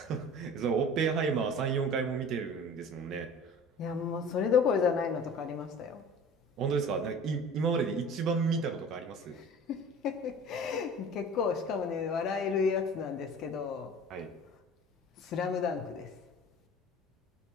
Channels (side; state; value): both; normal; correlation 0.42